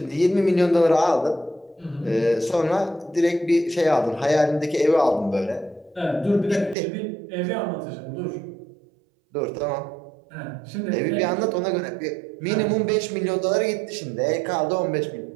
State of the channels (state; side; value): drops out; left; at 6.8 s